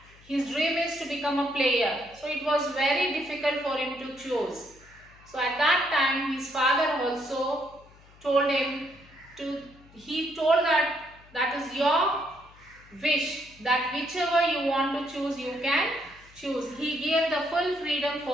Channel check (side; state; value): left; noise; hum, 25 dB below the sound